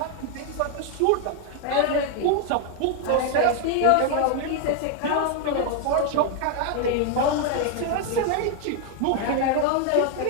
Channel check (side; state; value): both; different; correlation 0.00